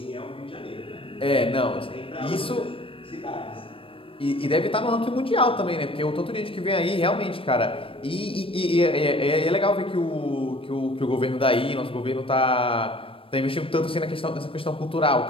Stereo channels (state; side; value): late; right; 0.26 ms